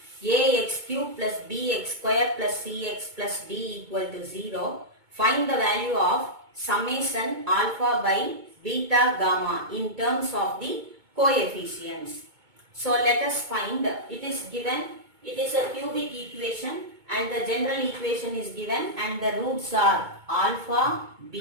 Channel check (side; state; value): left; late; 2.2 ms